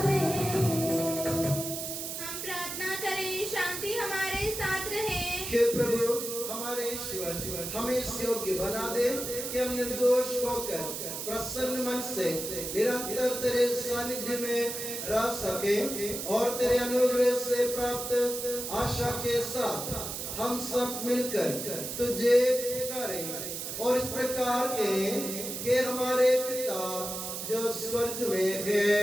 हम प्रार्थना करें, शांति हमारे साथ रहे। हे प्रभु हमारे ईश्वर, हमें इस योग्य बना दे कि हम निर्दोष होकर प्रसन्न मन से निरंतर तेरे सानिध्य में रह सके और तेरे अनुग्रह से प्राप्त आशा के साथ हम सब मिलकर तुझे पुकारें और इस प्रकार के हमारे पिता जो स्वर्ग में है,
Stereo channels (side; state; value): right; noise; hiss, 5 dB below the sound